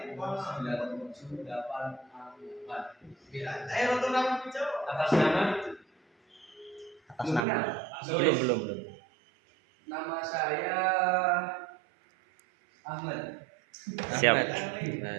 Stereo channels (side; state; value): left; drops out; at 7.5 s